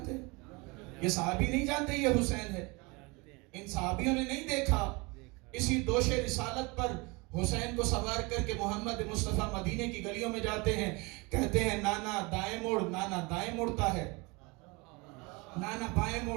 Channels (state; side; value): quieter; left; 26.9 dB